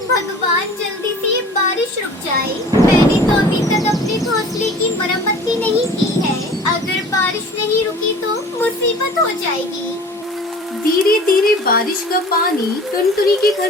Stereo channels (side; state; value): both; normal; correlation 0.44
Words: भगवान, जल्दी से ये बारिश रुक जाए। मैंने तो अभी तक अपने घोंसले की मरम्मत भी नहीं की है। अगर बारिश नहीं रुकी तो मुसीबत हो जाएगी। धीरे धीरे बारिश का पानी टुनटुनी के घर